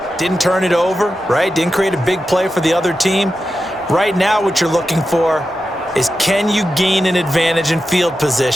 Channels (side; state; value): right; noise; rumble, 30 dB below the sound